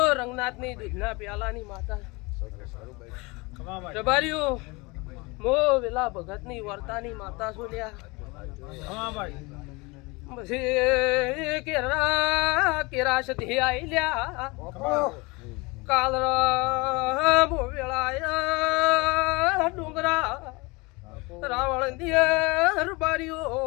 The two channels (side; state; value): right; quieter; 25.7 dB